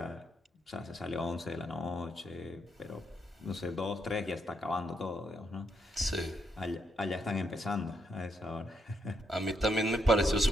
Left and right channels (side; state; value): both; normal; correlation 0.78